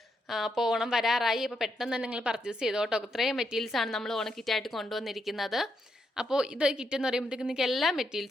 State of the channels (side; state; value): both; normal; correlation 0.81